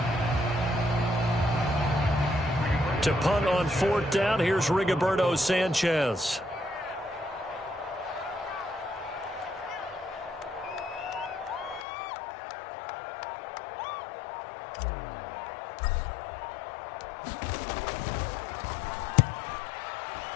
To punt on 4th down, here's Rigoberto Sanchez.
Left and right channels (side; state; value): right; drops out; at 11.9 s